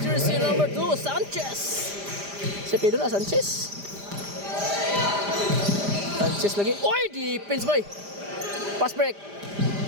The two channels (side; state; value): left; late; 5.0 ms